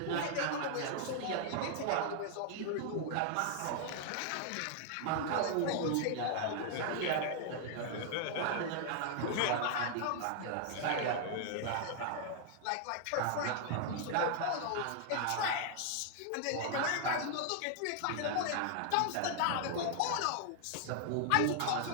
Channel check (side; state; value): both; different; correlation 0.00